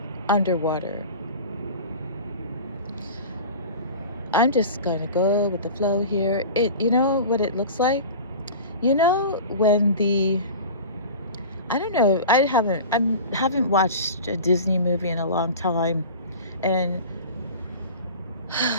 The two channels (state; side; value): inverted; both; correlation -0.35